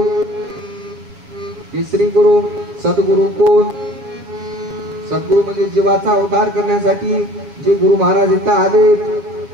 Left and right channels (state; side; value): late; left; 7.2 ms